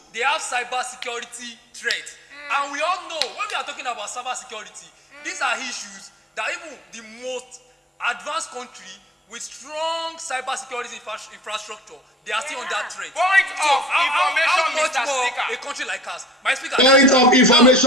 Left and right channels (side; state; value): both; normal; correlation 0.50